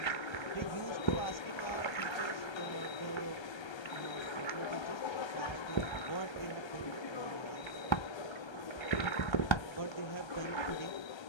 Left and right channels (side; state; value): right; late; 1.3 ms